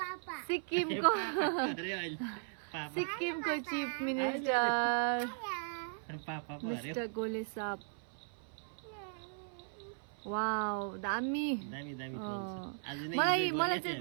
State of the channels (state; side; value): silent; left; 53 dB below the other